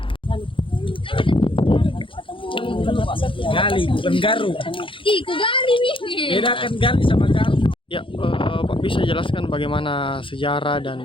Gali, bukan garu. Ku gali nih. Bedakan gali sama garu. Ya, Pak bisa jelaskan bagaimana sejarah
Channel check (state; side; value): late; right; 0.25 ms